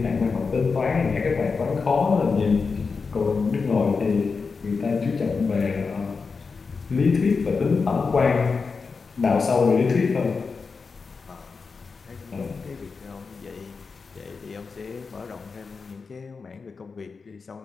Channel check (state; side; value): quieter; right; 4.8 dB